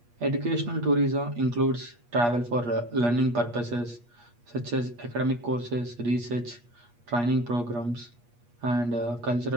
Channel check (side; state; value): left; late; 8.4 ms